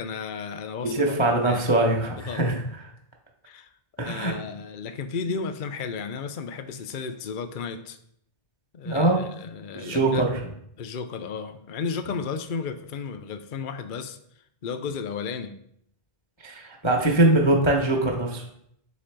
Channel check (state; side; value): late; right; 1.3 ms